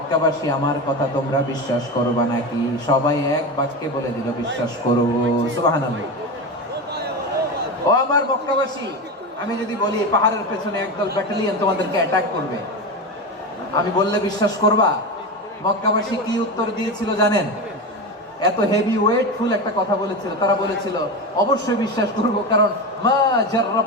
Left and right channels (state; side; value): normal; both; correlation 0.21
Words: আমার কথা তোমরা বিশ্বাস করবা নাকি? সবাই এক বাক্যে বলে দিল, বিশ্বাস করব। সুবহানাল্লাহ। ও আমার মক্কাবাসী, আমি যদি বলি পাহাড়ের পেছনে একদল ব্যাটালিয়ন তোমাদেরকে অ্যাটাক করবে, আমি বললে বিশ্বাস করবা? মক্কাবাসী কি উত্তর দিয়েছিল জানেন? এত হেভি ওয়েটফুল একটা কথা বলেছিল। তারা বলেছিল, অবশ্যই বিশ্বাস করব, কারণ মা